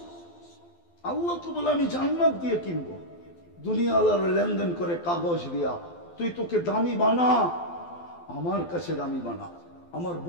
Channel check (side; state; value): right; late; 12 ms